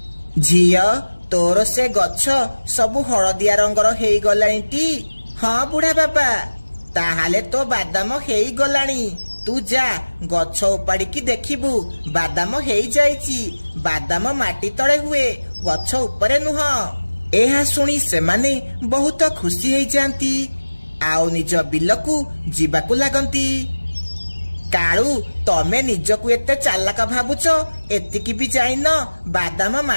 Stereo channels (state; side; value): inverted; both; correlation -1.00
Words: झियो तोर से गछ सबु हळदिया रंगर हेइ गलानी टी? हाँ बुढ़ा बाबा, ताहाले तो बादाम हेइ गलानी। तू जा गछ उपाड़िकी देखिबू, बादाम हेइ जाइची। बादाम माटी तळे हुए, गछ उपरे नुह। एहा सुनी सेमाने बहुत खुशी हेइ जांती, आउ निज बिलकू जीवाकू लागंती। काळू तमे निजकू एते चालाक भाबुच, एतिकी भी जाइन बादाम